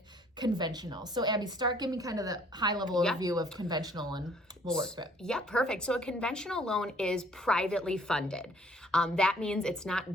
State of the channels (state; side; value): normal; both; correlation 0.59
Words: conventional. So Abby, give me kind of the high level overview of conventional and we'll work through it. Yeah, perfect. So a conventional loan is privately funded. That means it's